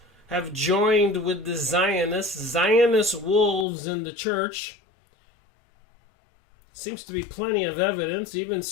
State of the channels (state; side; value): drops out; right; at 3.7 s